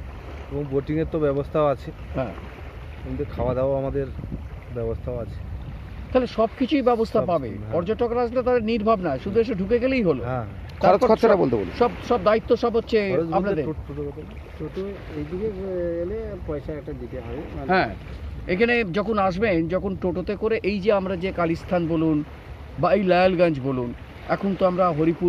এবং বোটিংয়ের তো ব্যবস্থাও আছে, হ্যাঁ কিন্তু খাওয়া দাওয়া আমাদের ব্যবস্থাও আছে। তাহলে সব কিছুই ব্যবস্থা সব, পাবে। হ্যাঁ। পর্যটকরা আসলে তাদের নির্ভাব না, শুধু এসে ঢুকে গেলেই হলো। হ্যাঁ, তারপর খরচটা বলতে বলুন। সব দায়িত্ব সব হচ্ছে খরচ বলতে আপনাদের। টোটো এইদিকে এলে পয়সা একটা দিতে হবে। হ্যাঁ, এখানে যখন আসবেন, যখন টোটোতে করে এই যে আমরা যে কালীস্থান বলুন বা এই লায়ালগঞ্জ বলুন, এখন তো আমরা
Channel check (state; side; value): identical; both; correlation 1.00